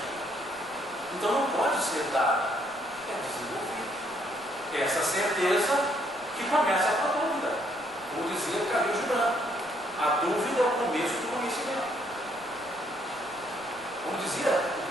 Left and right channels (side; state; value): right; noise; rumble, 26 dB below the sound